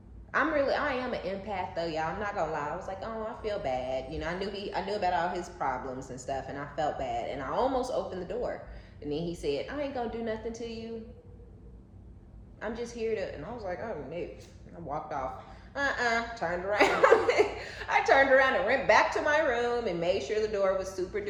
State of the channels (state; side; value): identical; both; correlation 1.00